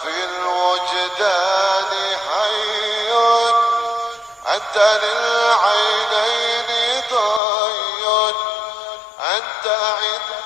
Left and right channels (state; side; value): drops out; right; at 7.4 s